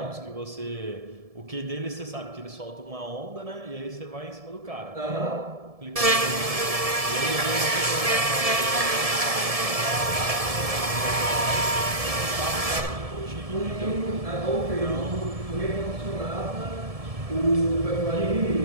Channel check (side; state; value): left; late; 1.7 ms